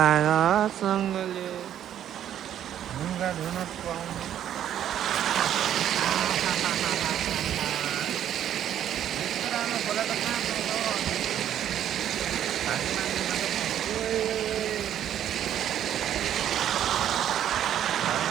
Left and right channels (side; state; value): left; quieter; 10.6 dB